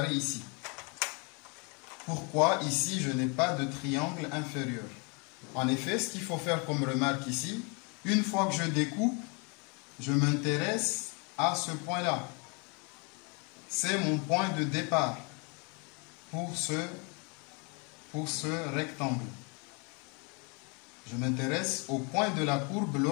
ici. Pourquoi ici je n'ai pas de triangle inférieur? En effet, ce qu'il faut faire comme remarque ici, une fois que je découpe, je m'intéresse à ce point-là. C'est mon point de départ pour ce rectangle. Je m'intéresse au point de la courbe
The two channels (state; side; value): quieter; right; 33.0 dB